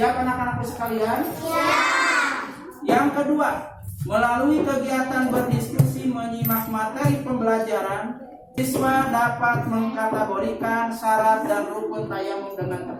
anak-anakku sekalian? Siap. Yang kedua, melalui kegiatan berdiskusi menyimak materi pembelajaran, siswa dapat mengkategorikan syarat dan rukun tayamum dengan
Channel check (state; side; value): identical; both; correlation 1.00